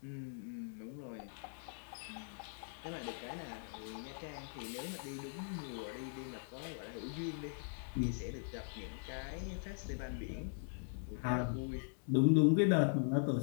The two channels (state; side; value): silent; right; digital silence